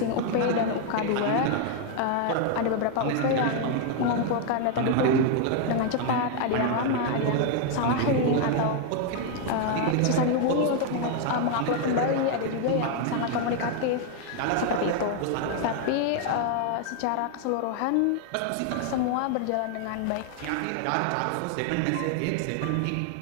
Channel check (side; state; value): both; different; correlation 0.00